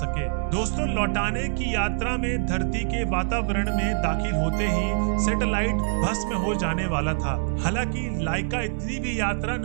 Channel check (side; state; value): left; silent; digital silence